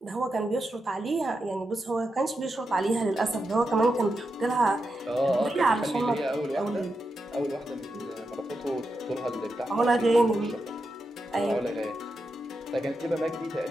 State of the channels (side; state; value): both; normal; correlation 0.87